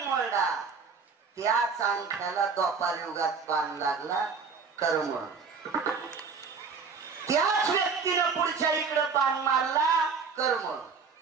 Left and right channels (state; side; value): quieter; left; 5.3 dB